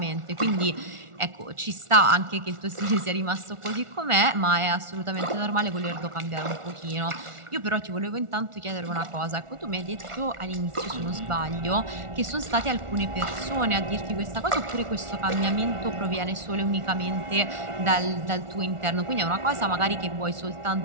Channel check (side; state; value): left; late; 1.4 ms